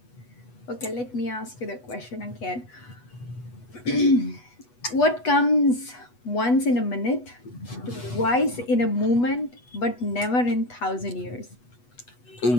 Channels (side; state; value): right; late; 8.1 ms